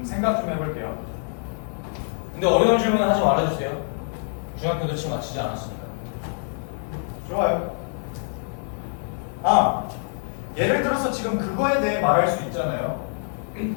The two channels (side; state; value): right; silent; digital silence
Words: 생각 좀 해볼게요. 근데 어려운 질문은 하지 말아주세요. 중학교도 채 마치지 않았으니까. 좋아요. 아, 예를 들어서 지금 그거에 대해 말할 수 있잖아요.